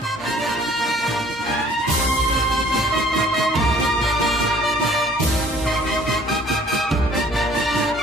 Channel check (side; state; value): both; normal; correlation 0.55